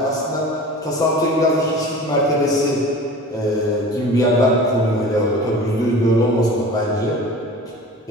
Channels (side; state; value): both; normal; correlation 0.39